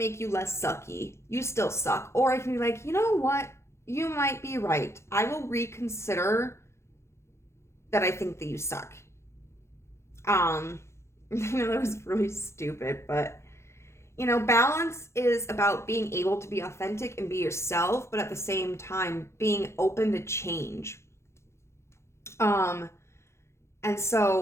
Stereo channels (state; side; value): late; right; 0.13 ms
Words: you less sucky, you still suck. Or I can be like, you know what? You might be right. I will reconsider that I think that you suck. You know, that was really stupid, but you know, balance is about being able to be authentic and be yourself, but at the same time being open to change. And